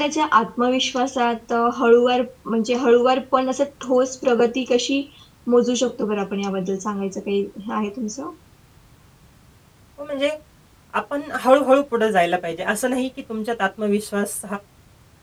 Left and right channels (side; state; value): both; identical; correlation 1.00